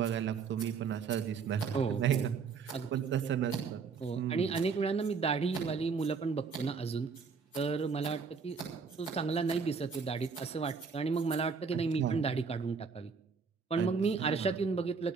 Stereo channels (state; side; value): quieter; left; 5.4 dB